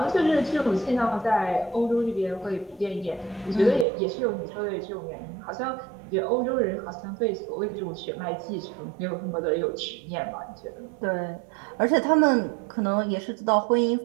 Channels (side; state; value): left; drops out; at 3.9 s